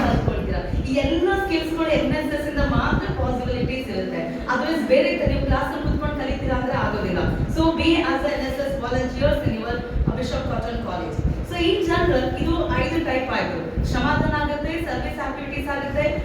ಕಲ್ತ್ಕೊಳ್ತೀರಾ. ಈ ಎಲ್ಲ ಸ್ಕಿಲ್ಸ್ ಗಳು NSS ಇಂದ ಮಾತ್ರ ಪಾಸಿಬಿಲಿಟೀಸ್ ಇರುತ್ತೆ. ಅದರ್ವೈಸ್ ಬೇರೆ ನೀವು ಕ್ಲಾಸ್ ನಲ್ಲಿ ಕೂತ್ಕೊಂಡು ಕಲಿತೀರಾ ಅಂದ್ರೆ ಆಗೋದಿಲ್ಲ. So B as NSS volunteers in your bishop cotton college. So in general ಇದು 5 ಟೈಪ್ ಆಯ್ತು. ಶ್ರಮದಾನ ಆಗುತ್ತೆ, ಸರ್ವಿಸ್ ಆಕ್ಟಿವಿಟೀಸ್ ಆಗುತ್ತೆ,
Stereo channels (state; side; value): identical; both; correlation 1.00